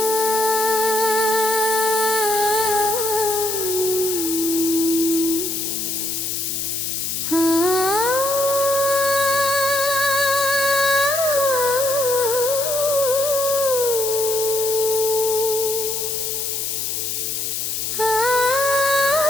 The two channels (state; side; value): noise; left; hiss, 2 dB below the sound